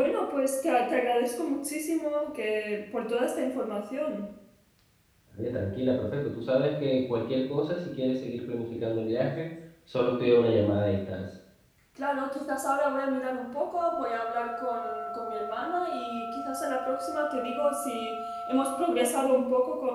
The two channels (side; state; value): both; identical; correlation 1.00